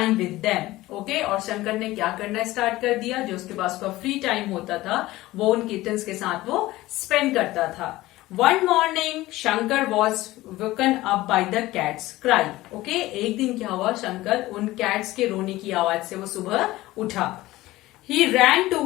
with them. Okay, और शंकर ने क्या करना स्टार्ट कर दिया, जो उसके पास का फ्री टाइम होता था वो उन किटन्स के साथ वो स्पेंड करता था। One morning, Shankar was woken up by the cat's cry. Okay, एक दिन क्या हुआ, शंकर उन कैट्स के रोने की आवाज से वो सुबह उठा। He ran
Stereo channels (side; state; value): right; quieter; 17.7 dB